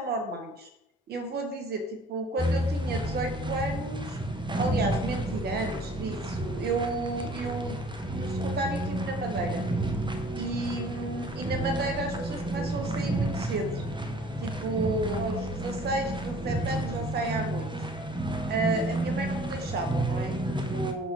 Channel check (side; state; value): both; normal; correlation 0.52